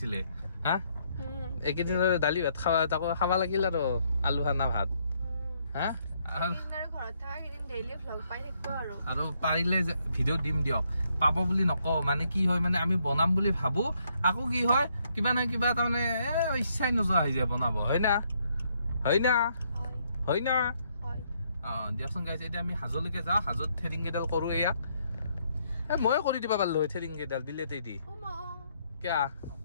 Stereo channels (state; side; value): inverted; both; correlation -0.72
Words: এইকেইদিনৰ দালি ভাত খাবা তাকো খাবা লাগিল আৰু আলু খানা ভাত হা আৰু পাৰিলে ভিডিঅ' দিম দিয়ক পাব বুলি নকওঁ মানে কি হয় মানে আমি বনাম বুলি ভাবো আকৌ কি হয় কিবা নহয় কিবা তাৰমানে ইচ্ছাই নোযোৱা হৈ যায় বনাব হয় না দিয়কচোন গাইছ এতিয়া আমি হাজলৈকে যাওঁ হাজত থ্ৰেডিং কেইডাল কৰোঁ ইয়াক ময়ে কৰি দিবা পাৰিলো থ্ৰেডিং কেইডাল বিলেতে দি কিয়া